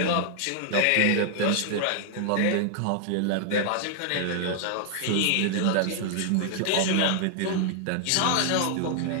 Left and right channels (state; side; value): different; both; correlation 0.00